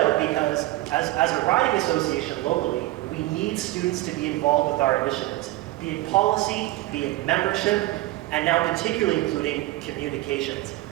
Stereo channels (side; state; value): left; quieter; 17.8 dB